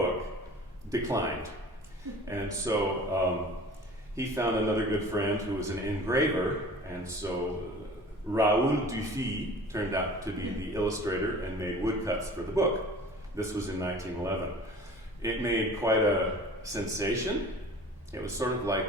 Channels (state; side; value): normal; both; correlation 0.44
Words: declined. And so he found another good friend who was an engraver, and so Raoul Dufy turned out to be the illustrator and made woodcuts for the book. This was in 1911. It made quite a sensation. It was sort of like